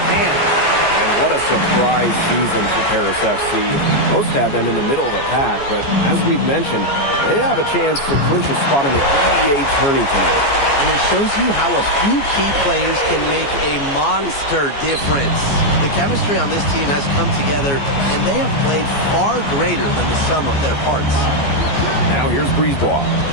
hand. And what a surprise season for Paris FC. Most had them in the middle of the pack, but as we've mentioned, they have a chance to clinch a spot in the EBA tourney tonight. And it shows you how a few key players can make a monster difference. The chemistry on this team has come together, and they have played far greater than the sum of their parts. Now here's Brisebois.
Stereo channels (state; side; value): late; right; 14 ms